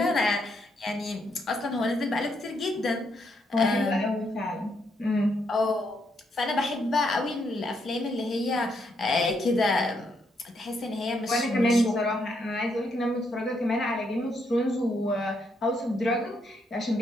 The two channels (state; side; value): normal; both; correlation 0.76